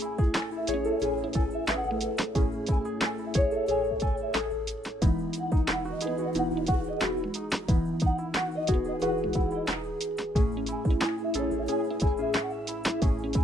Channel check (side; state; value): both; normal; correlation 0.75